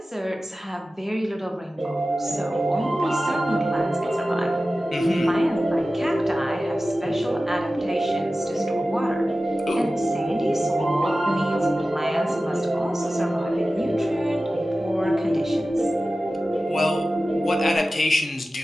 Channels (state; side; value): normal; both; correlation 0.95